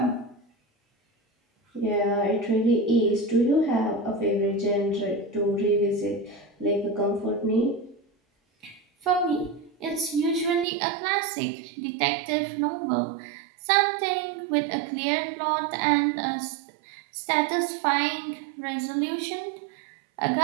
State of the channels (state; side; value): drops out; left; at 10.7 s